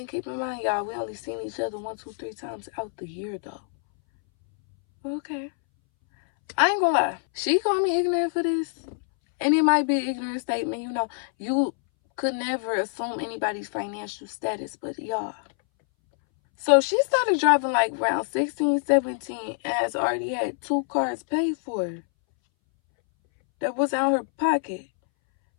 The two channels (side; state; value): right; silent; 61 dB below the other